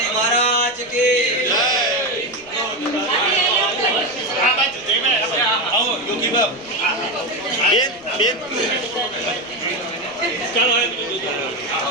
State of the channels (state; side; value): noise; right; rumble, 28 dB below the sound